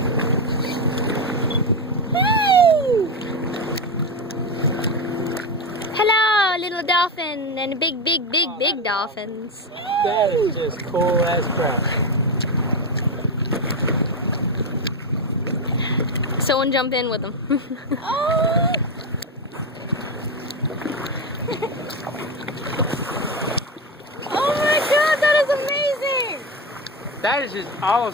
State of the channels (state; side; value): normal; both; correlation 0.14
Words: Hey! Hello, little dolphin and big dolphins. That is just cool as crap. Someone jump in with them. Oh! Oh my god, that is amazing! That is just